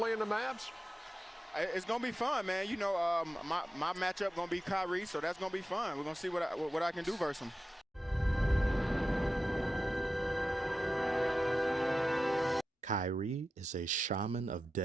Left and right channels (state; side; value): normal; both; correlation 0.92